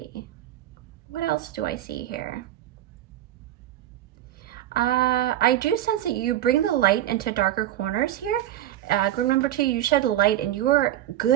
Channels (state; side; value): quieter; left; 12.9 dB